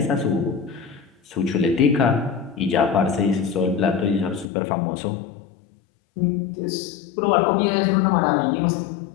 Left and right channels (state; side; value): drops out; right; at 4.5 s